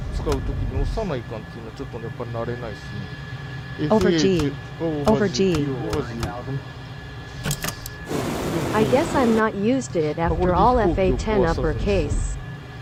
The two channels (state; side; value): identical; both; correlation 1.00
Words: 使うときに押さないかんっていうのはちょっとやっぱり慣れないですね。Over G. Over G. I guess I'm not used to it after all FA10 uppercase.